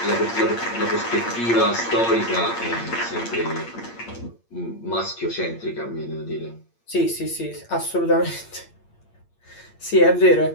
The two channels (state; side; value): late; right; 8.7 ms